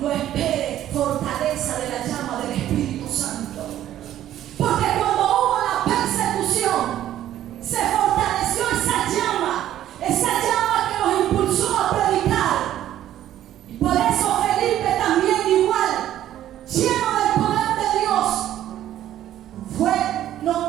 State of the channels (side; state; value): left; quieter; 12.2 dB